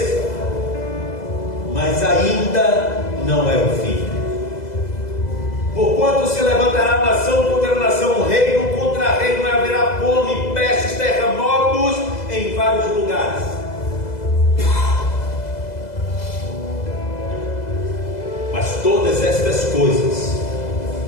mas ainda não é o fim. Porquanto se levantará nação contra nação, reino contra reino, e haverá fome, pestes, terremotos em vários lugares. Mas todas estas coisas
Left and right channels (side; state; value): right; late; 2.0 ms